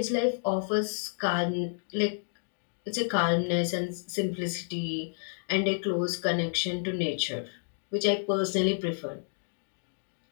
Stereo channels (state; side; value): silent; right; digital silence